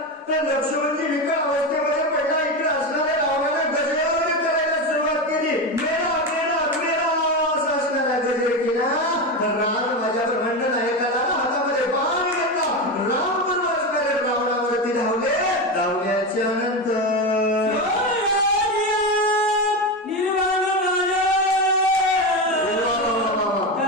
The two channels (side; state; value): both; normal; correlation 0.17